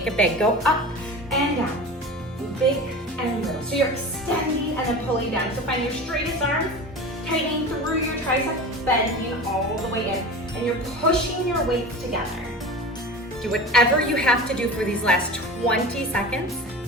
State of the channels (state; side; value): normal; both; correlation 0.32